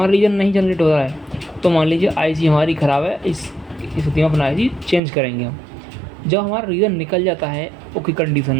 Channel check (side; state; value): left; drops out; at 5.0 s